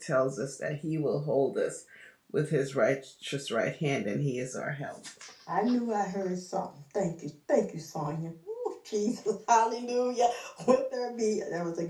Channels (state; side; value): identical; both; correlation 1.00